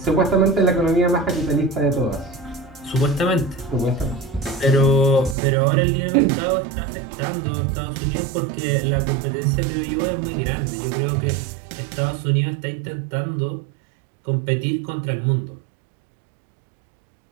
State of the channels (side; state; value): left; drops out; at 5.4 s